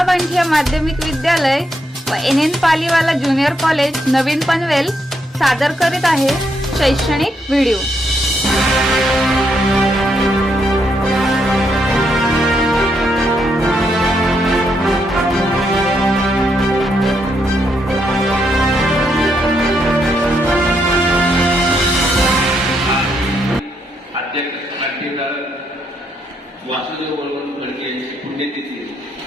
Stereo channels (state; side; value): normal; both; correlation 0.78